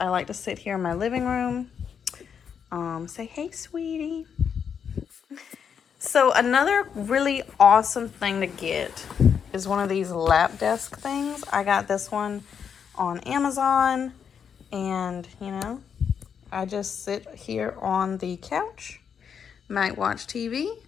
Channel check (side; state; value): right; quieter; 7.3 dB